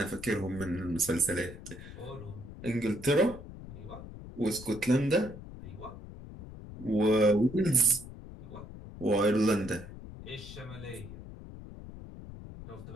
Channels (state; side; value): noise; left; rumble, 13 dB below the sound